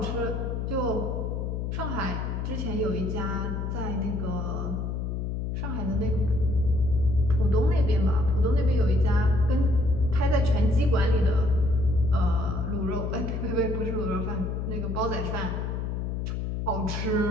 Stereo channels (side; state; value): left; noise; hum, 2 dB below the sound